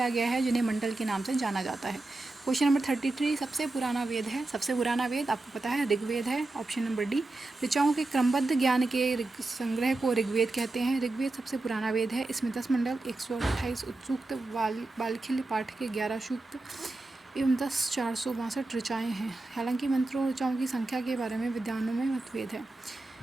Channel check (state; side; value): quieter; left; 3.0 dB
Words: गया है, जिन्हें मंडल के नाम से जाना जाता है। क्वेश्चन नंबर 33, सबसे पुराना वेद है। सबसे पुराना वेद आपको पता है ऋग्वेद है, ऑप्शन नंबर डी। ऋचाओं के क्रमबद्ध ज्ञान के संग्रह को ऋग्वेद कहते हैं। ऋग्वेद सबसे पुराना वेद है। इसमें 10 मंडल, 128 सूक्त, बालखिल्य पाठ के 11 सूक्त एवं 10 462 ऋचाएँ हैं। हालांकि मंत्रों ऋचाओं की संख्या के बारे में विद्वानों में मतभेद है।